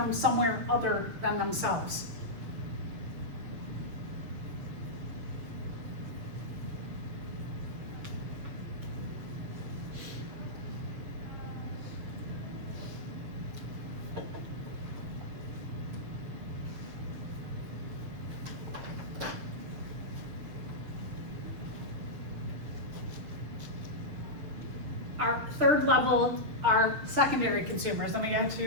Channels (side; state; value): left; late; 7.0 ms